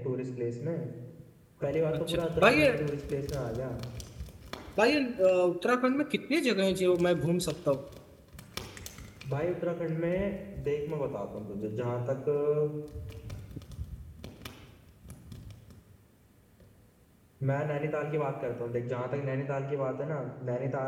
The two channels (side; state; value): both; identical; correlation 1.00